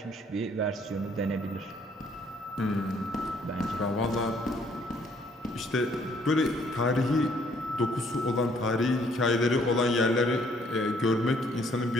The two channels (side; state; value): both; normal; correlation 0.64